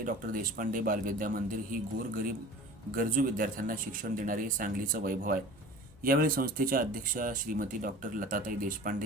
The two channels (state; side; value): normal; both; correlation 0.41